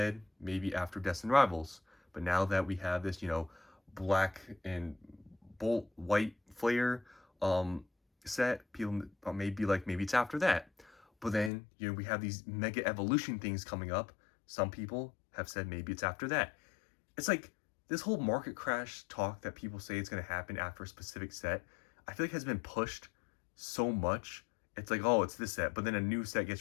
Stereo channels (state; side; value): drops out; right; at 11.5 s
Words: maybe after Destined Rivals, but now that we have this, black and bolt white flare set, people may be like maybe it's after that. But then we have these mega evolution things coming up. Some people have said maybe it's after that. It's like this whole market crash talk that people say it's going to happen after a specific set. I feel like has been pushed so much. It's like, oh, it's this set, but then a new set